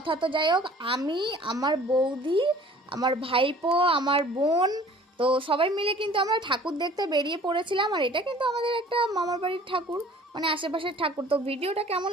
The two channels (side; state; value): both; normal; correlation 0.49